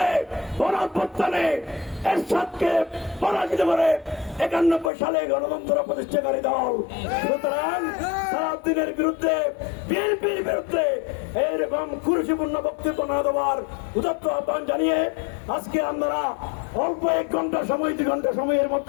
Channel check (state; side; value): drops out; right; at 4.9 s